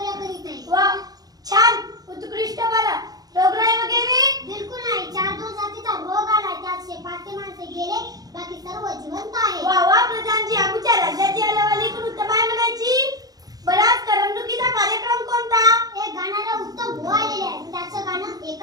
करीत नाही. वा, छान, उत्कृष्ट. बरं, रोगराई वगैरे? बिलकुल नाही. 4 जातीचा रोग आला, त्यात 5 माणसे गेले, बाकी सर्व जिवंत आहे. वा वा प्रधानजी, आमच्या राज्याची हलवाली पण उत्तम आहे म्हणायची. बराच करमणुकीचा कार्यक्रम कोणता? एक गाणारा उत्तम भाऊ आलेले आहे, त्याचं गाणं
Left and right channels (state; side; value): late; left; 0.18 ms